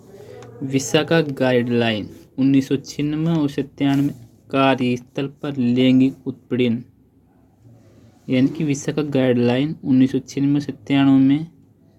विशाखा गाइडलाइन 1996 और 97 कार्यस्थल पर लैंगिक उत्पीड़न यानी कि विशाखा गाइडलाइन 1996 से 97 में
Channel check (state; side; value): identical; both; correlation 1.00